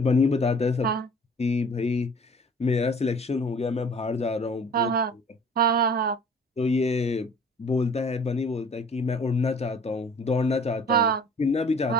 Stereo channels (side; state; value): both; normal; correlation 0.49